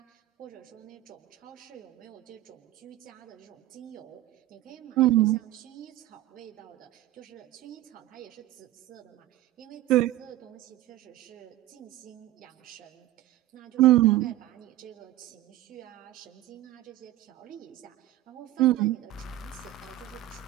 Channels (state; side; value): quieter; left; 14.8 dB